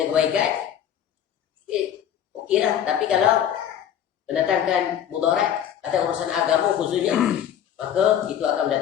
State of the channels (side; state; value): right; quieter; 9.8 dB